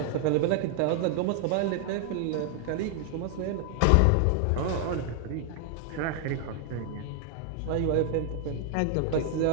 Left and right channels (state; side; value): different; both; correlation 0.00